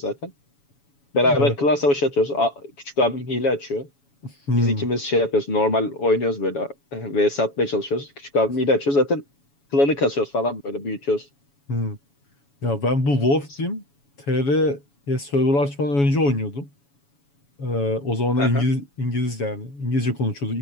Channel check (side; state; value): right; late; 7.1 ms